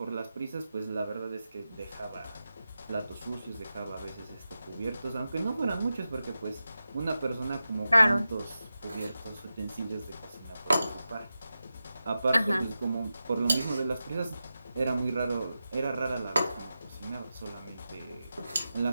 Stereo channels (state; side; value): inverted; both; correlation -0.92